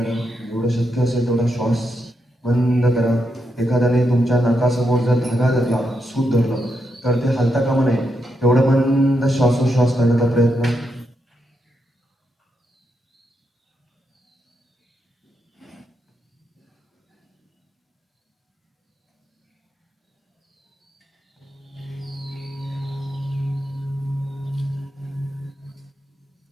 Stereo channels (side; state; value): both; normal; correlation 0.82